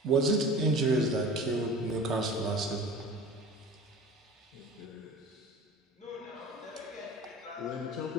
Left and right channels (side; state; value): both; normal; correlation 0.39